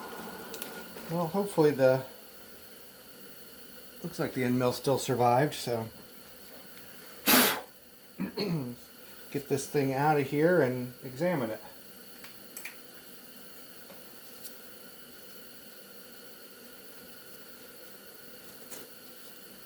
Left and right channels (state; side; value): identical; both; correlation 1.00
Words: Well, hopefully looks like the end mill still survived, so get this thing out of here and examine it.